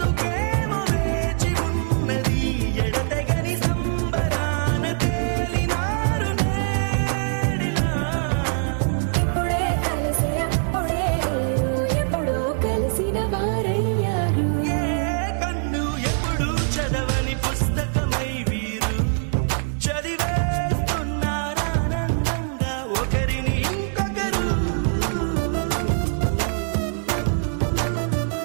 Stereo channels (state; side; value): silent; left; 63 dB below the other